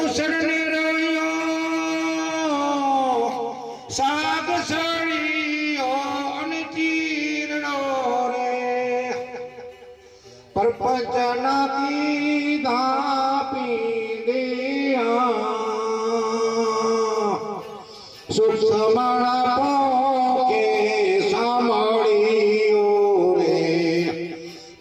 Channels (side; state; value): both; identical; correlation 1.00